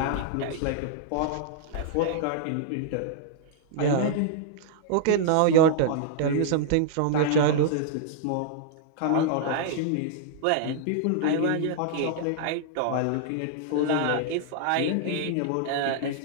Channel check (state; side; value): different; both; correlation -0.01